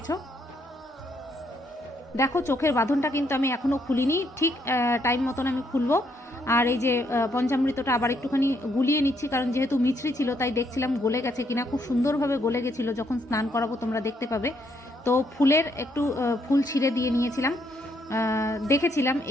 দেখো, চোখের বাঁধনটা কিন্তু আমি এখনও খুলিনি, ঠিক টাইম মতন আমি খুলবো। আর এই যে পঞ্চামৃতটা আবার একটুখানি গুলিয়ে নিচ্ছি, কারণ যেহেতু মিছরি ছিল তাই দেখছিলাম গলে গেছে কিনা। খুব সুন্দরভাবে গলে গেছিলো, যখন স্নান করাবো তোমরা দেখতে পাবে। তো ফুলের একটু ফুল ছিঁড়ে দিয়ে নিয়েছিলাম, দেখেছিলাম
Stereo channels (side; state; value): both; normal; correlation 0.73